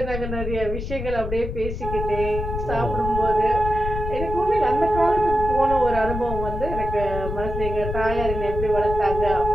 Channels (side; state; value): left; noise; rumble, 5 dB below the sound